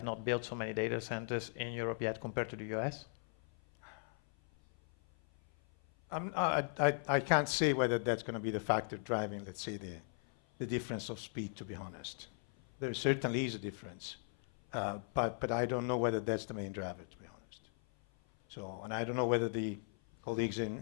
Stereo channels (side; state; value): right; silent; 52 dB below the other